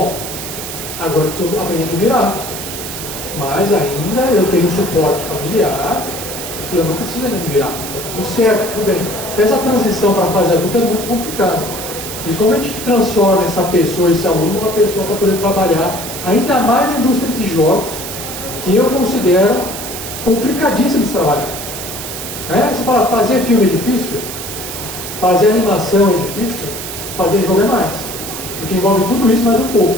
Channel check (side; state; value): right; noise; hiss, 8 dB below the sound